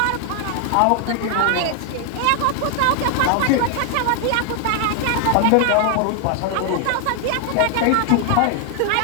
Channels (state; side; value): different; both; correlation 0.00